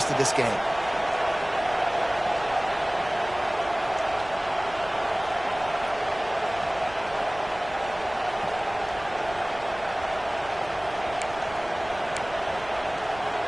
of this game.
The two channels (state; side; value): noise; right; rumble, 19 dB below the sound